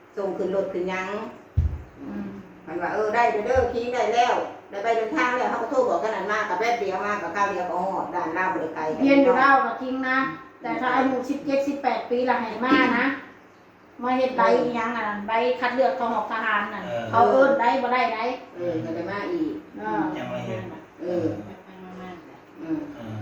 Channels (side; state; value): both; identical; correlation 1.00